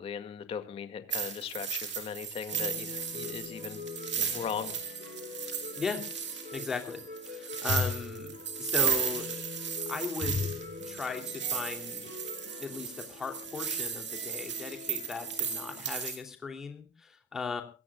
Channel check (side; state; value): both; normal; correlation 0.31